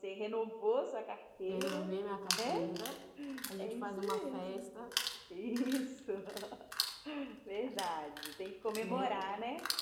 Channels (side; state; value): both; identical; correlation 1.00